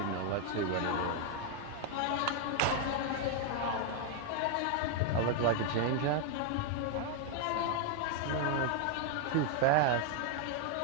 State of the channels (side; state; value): both; different; correlation 0.00